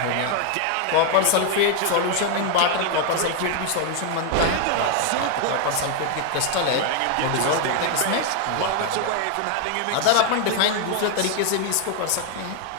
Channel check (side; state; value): both; different; correlation 0.00